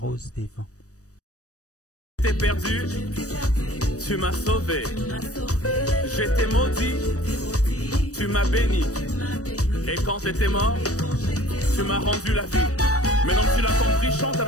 des vents. J'étais perdu, tu m'as sauvé. J'étais maudit, tu m'as béni. Et quand j'étais mort, tu m'as rendu la vie. Maintenant que tu l'as compris, chante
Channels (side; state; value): right; late; 0.66 ms